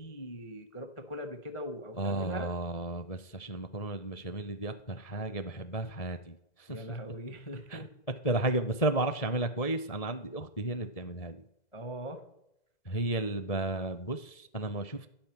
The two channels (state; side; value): late; right; 1.7 ms